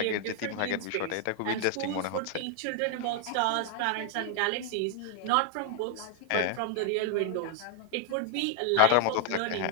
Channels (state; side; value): different; both; correlation 0.00